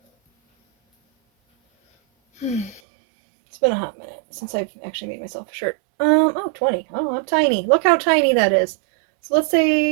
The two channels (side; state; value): left; drops out; at 2.8 s